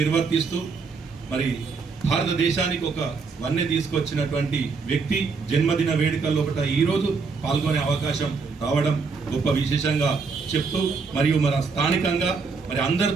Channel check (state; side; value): quieter; left; 4.8 dB